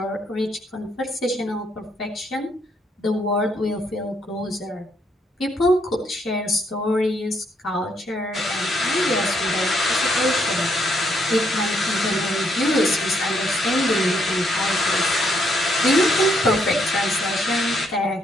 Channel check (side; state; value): both; normal; correlation 0.73